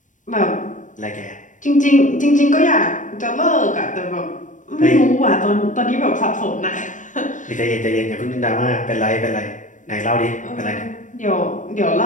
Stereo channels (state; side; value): late; right; 0.37 ms